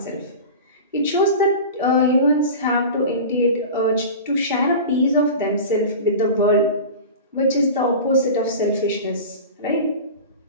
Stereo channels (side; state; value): both; inverted; correlation -0.32